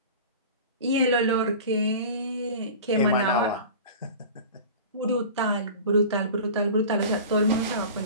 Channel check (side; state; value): both; inverted; correlation -0.36